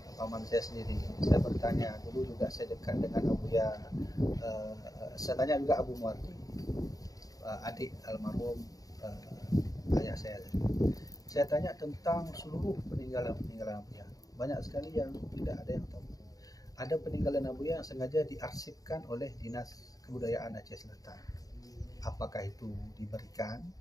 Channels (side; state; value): right; late; 0.18 ms